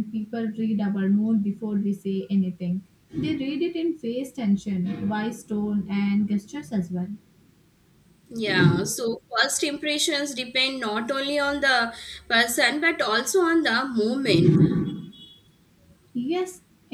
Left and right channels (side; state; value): both; identical; correlation 1.00